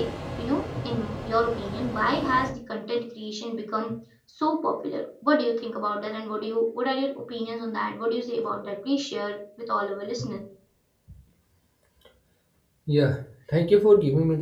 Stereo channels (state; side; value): identical; both; correlation 1.00